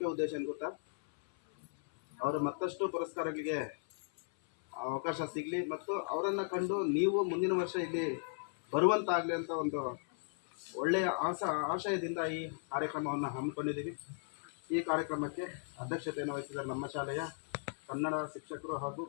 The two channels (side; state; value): right; silent; 54 dB below the other